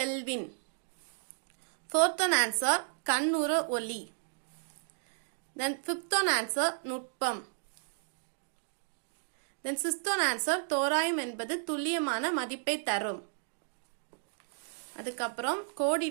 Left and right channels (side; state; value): left; silent; digital silence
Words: fourth one answer கண்ணுற ஒளி. then fifth one answer நுட்பம். then sixth one answer தோராயம் என்பது துல்லியமான மதிப்பை தரும். அதுக்கப்புறம்